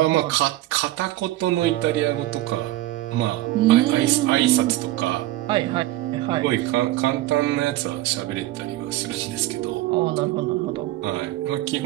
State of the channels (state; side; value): quieter; left; 16.0 dB